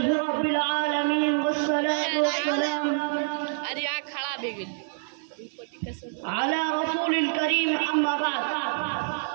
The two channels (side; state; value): left; silent; digital silence